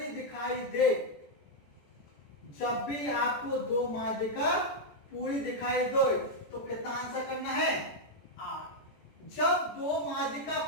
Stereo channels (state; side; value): late; right; 14 ms